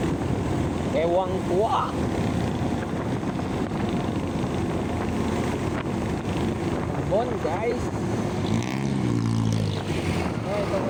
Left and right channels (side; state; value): both; identical; correlation 1.00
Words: Ewang kuwa. Bon guys. Ito